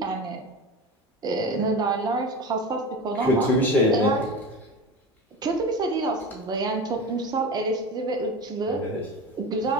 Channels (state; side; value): normal; both; correlation 0.28